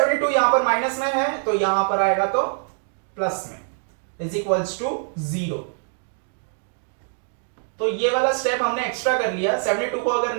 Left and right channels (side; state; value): left; silent; 61 dB below the other